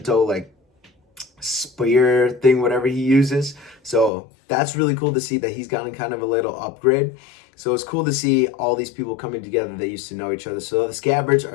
like spear thing, whatever he uses. So that's really cool to see that he's gotten kind of a little upgrade. So it's cool to see all these people coming together that used to know each other. So the scabbards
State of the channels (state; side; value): drops out; right; at 4.1 s